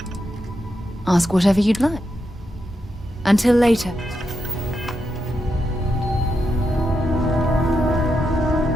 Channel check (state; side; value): normal; both; correlation 0.85